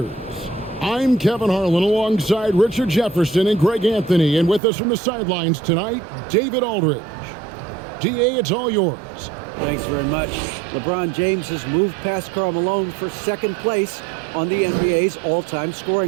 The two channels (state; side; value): drops out; left; at 4.6 s